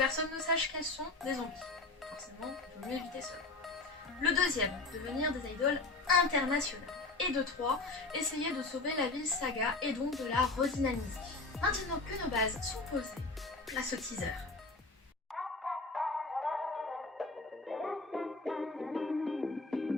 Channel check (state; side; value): quieter; right; 3.4 dB